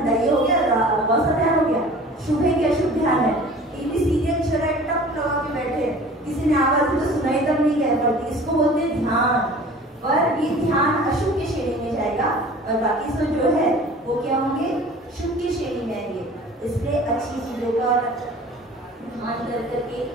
ये हो गया बस ध्यान हो गया। शुभ है क्या, शुभ ध्यान है। टीवी सीरियल चला है, टप लगा के बैठे, किसी ने आवाज तो सुनाई तब नहीं कह पड़ती, इसको बोलते हैं ध्यान। पर ये ध्यान अशुभ की श्रेणी में जाएगा और बाकी सब जो है वो क्या होंगे, शुभ की श्रेणी में आएंगे। इसलिए अच्छी चीजों का ध्यान कर करके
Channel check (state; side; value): normal; both; correlation 0.44